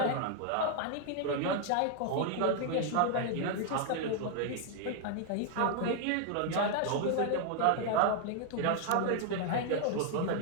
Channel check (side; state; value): both; different; correlation 0.00